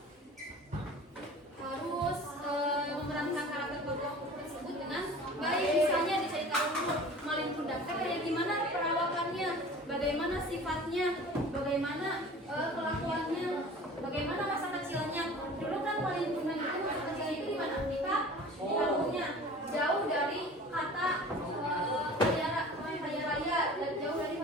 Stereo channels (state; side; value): normal; both; correlation 0.42